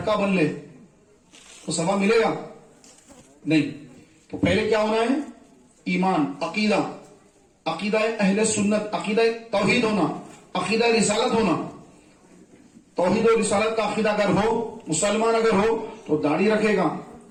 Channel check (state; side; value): identical; both; correlation 1.00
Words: بن لے تو ثواب ملے گا نہیں. تو پہلے کیا ہونا ہے؟ ایمان, عقیدہ, عقیدہ اہل سنت, عقیدہ توحید ہونا, عقیدہ رسالت ہونا. توحید و رسالت کا عقیدہ اگر ہو, مسلمان اگر ہو تو داڑھی رکھے گا,